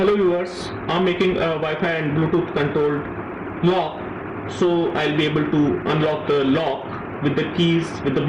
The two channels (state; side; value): identical; both; correlation 1.00